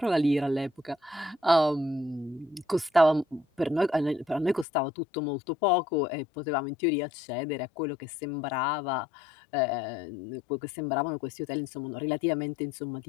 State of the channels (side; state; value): right; drops out; at 4.7 s